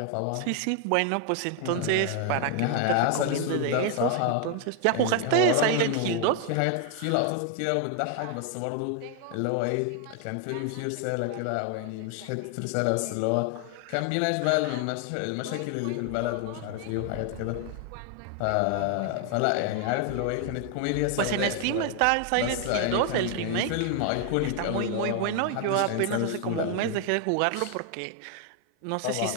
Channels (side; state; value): both; different; correlation 0.00